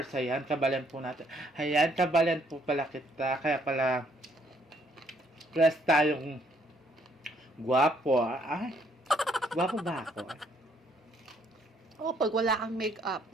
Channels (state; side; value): normal; both; correlation 0.67